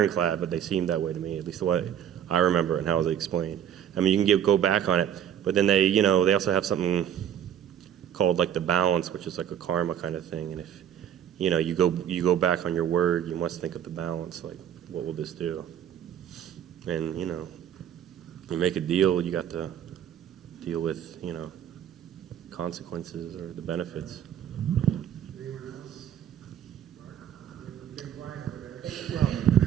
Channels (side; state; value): left; quieter; 9.8 dB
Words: but they seem that way to me, at least the way I remember and how they explained. I mean, you can go back on it, but then they also have something called like the balance, which is like a karma kind of thing. And if you go back on your word. You must think of the balance. Like, what will this do? And you make a deal. You got to deal with consequences or the benefits. Anyone else? You've been quiet over